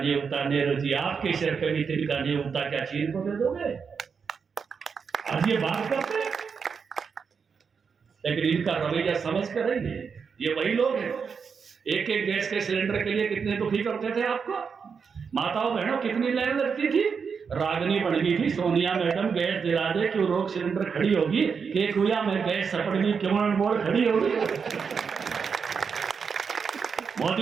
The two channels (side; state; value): left; quieter; 6.0 dB